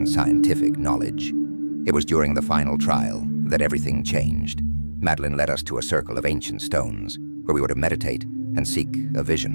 scientific knowledge. It was during the final trial that everything changed. Madeline led us to a circle of ancient stones, where we were to meditate and seek a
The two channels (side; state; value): both; inverted; correlation -1.00